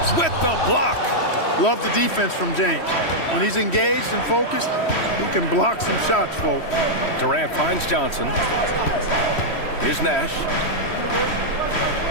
with the block. Love the defense from James. When he's engaged and focused, he can block some shots, folks. Durant finds Johnson. Here's Nash.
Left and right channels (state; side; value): late; right; 3.1 ms